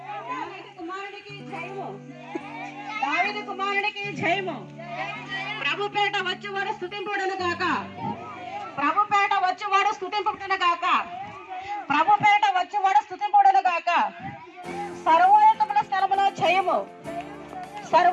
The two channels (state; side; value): identical; both; correlation 1.00